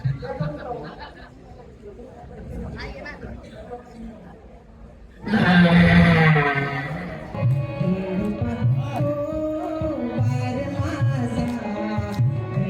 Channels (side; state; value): both; identical; correlation 1.00